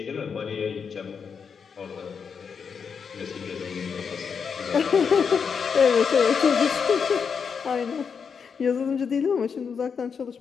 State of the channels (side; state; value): right; quieter; 6.3 dB